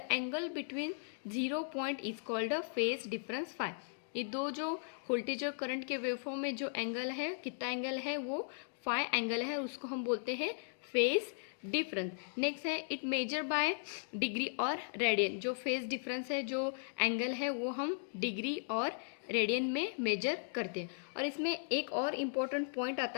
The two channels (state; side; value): silent; right; digital silence